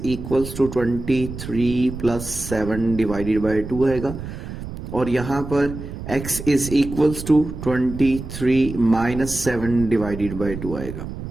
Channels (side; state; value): right; noise; rumble, 9 dB below the sound